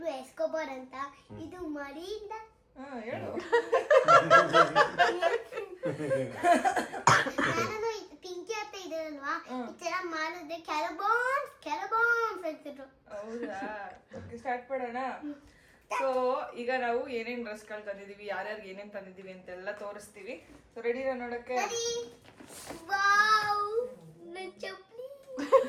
ಎಸ್ಕೋಬಾರ್ ಅಂತ. ಇದು ಮರಿಯಿಂದ ಹೇಳು. ನಾನು ಪಿಂಕಿ ಅಂತ ಇದರಲ್ವಾ, ಈ ತರ ಮಾಡಿದ್ರೆ ಕ್ಯಾರಬಾನ್ಸ್ ಅಂತಿದ್ರು. ಹೌದಾ, ಓಕೆ ಸ್ಟಾರ್ಟ್ ಮಾಡೋಣ. ಸೊ ಈಗ ನಾವು ಏನೇನ್ ಡ್ರೆಸ್ಗಳು ತಂದಿದೀವಿ, ಯಾರ್ಯಾರಿಗೆ ಏನೇನ್ ತಂದಿದೀವಿ ಅಂತೆಲ್ಲ ತೋರಿಸ್ತೀವಿ. ಸೊ ರೆಡಿನಾ ನೋಡಕ್ಕೆ? ವಾವ್, ನನ್ನ ಚಪ್ಪಲಿ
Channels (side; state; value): both; identical; correlation 1.00